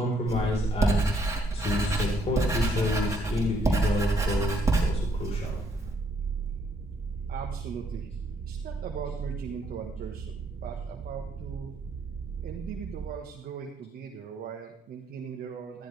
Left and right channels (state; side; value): normal; both; correlation 0.70